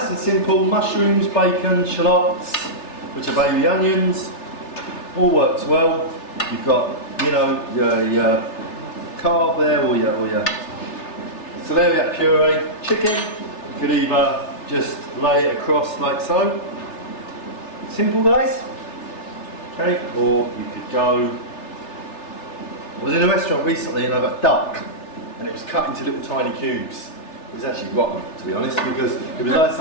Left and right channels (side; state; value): right; late; 3.3 ms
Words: and simple. Mushrooms, bacon, shallots, which are baby onions. All works well. You've got, you know, your carb there, or your celeriac puree. Chicken, you could either just lay it across like so. Simple, guys. Okay, or you could go. I was in a restaurant recently and I got duck, and it was cut into little tiny cubes. It was actually rotten, to be honest, because it was like